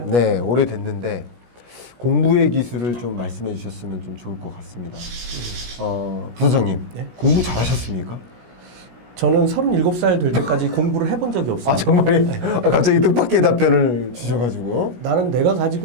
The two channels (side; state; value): left; late; 17 ms